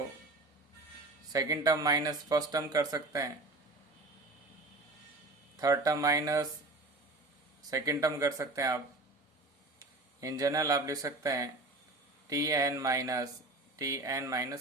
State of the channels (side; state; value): left; quieter; 3.1 dB